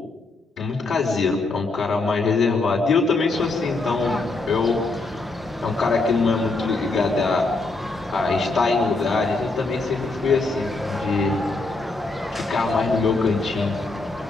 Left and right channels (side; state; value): right; quieter; 3.4 dB